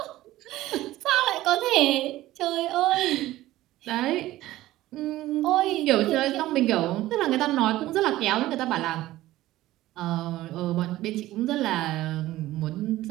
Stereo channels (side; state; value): left; quieter; 15.9 dB